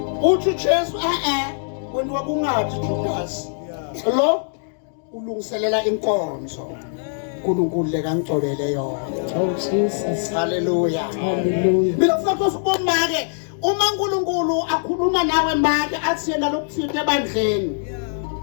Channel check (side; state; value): right; silent; digital silence